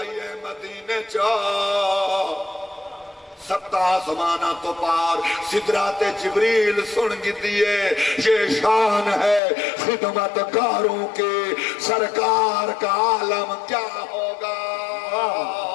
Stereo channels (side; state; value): right; drops out; at 9.4 s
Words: مدینے چا ستا زمانہ تو پار سدرات جبریل سن گی دیئے یہ شان ہے خدمت کاروں کے سرکار کا عالم کیا ہوگا